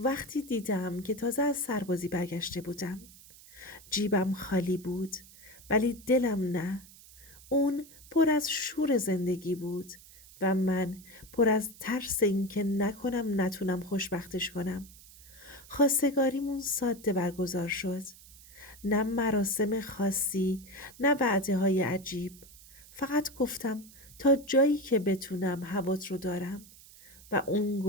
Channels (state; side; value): noise; right; hiss, 21 dB below the sound